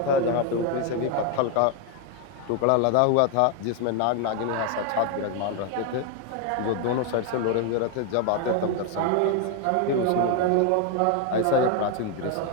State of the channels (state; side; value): different; both; correlation 0.01